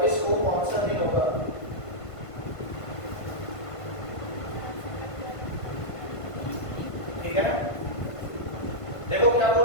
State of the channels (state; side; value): late; right; 1.5 ms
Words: को कौन सा दिन होगा? ठीक है ना? देखो क्या